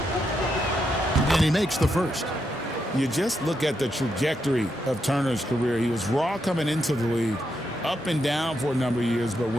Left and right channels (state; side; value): normal; both; correlation 0.82